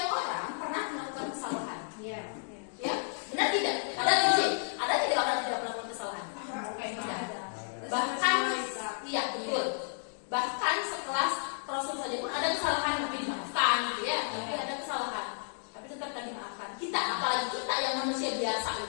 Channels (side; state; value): right; silent; digital silence